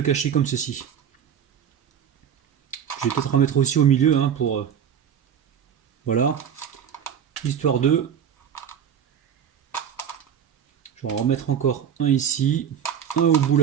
cacher comme ceci. Je vais peut-être en mettre aussi au milieu hein, pour... voilà. Histoire de... Je vais en remettre encore un ici, un au bout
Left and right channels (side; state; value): left; quieter; 8.5 dB